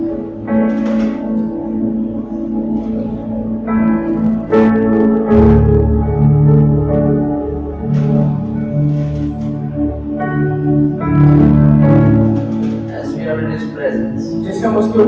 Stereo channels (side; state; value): both; identical; correlation 1.00